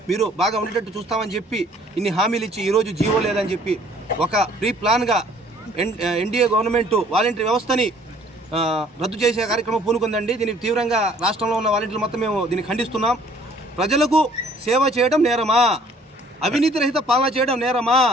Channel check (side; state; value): both; normal; correlation 0.58